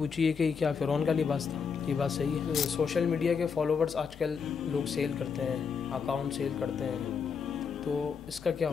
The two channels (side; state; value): right; quieter; 6.0 dB